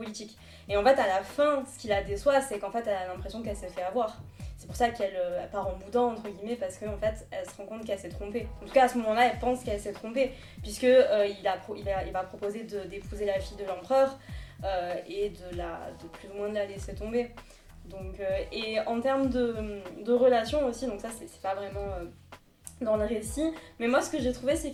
Et en fait à la fin, ce qui la déçoit, c'est qu'en fait elle a l'impression qu'elle s'est fait avoir. C'est pour ça qu'elle part en boudin entre guillemets, parce qu'en fait elle se rend compte qu'elle s'est trompée. En tout cas à ce moment-là, elle pense qu'elle s'est trompée, puisque il va proposer d'épouser la fille de l'empereur et de plus ou moins de la laisser tomber. Donc, et en termes de relations aussi, donc ça c'est pas vraiment dans le récit, mais moi ce que j'ai trouvé, c'est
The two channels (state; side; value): identical; both; correlation 1.00